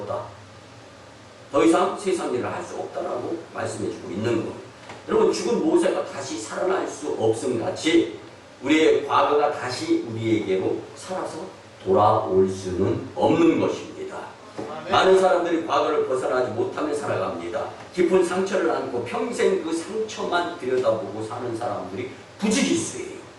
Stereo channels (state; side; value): identical; both; correlation 1.00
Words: 더 이상 세상 일을 할 수 없다라고 말씀해주고 있는 거예요. 여러분, 죽은 모세가 다시 살아날 수 없음 같이 우리의 과거가 다시 우리에게로 살아서 돌아올 수는 없는 것입니다. 많은 사람들이 과거를 벗어나지 못하며 살아갑니다. 깊은 상처를 안고 평생 그 상처만 들여다보고 사는 사람들이 부지기수예요.